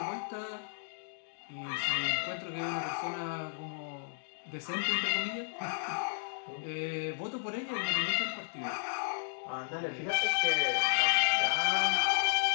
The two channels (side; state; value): right; silent; digital silence